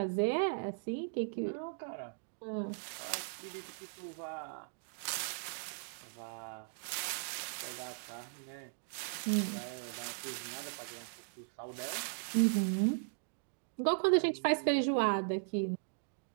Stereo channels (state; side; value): silent; left; digital silence